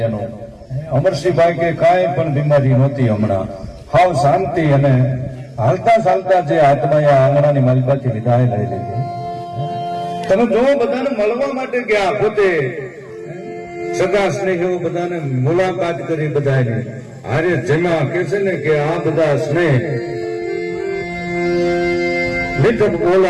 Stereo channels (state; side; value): identical; both; correlation 1.00